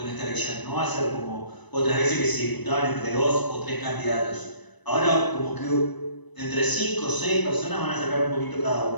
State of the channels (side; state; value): right; late; 1.0 ms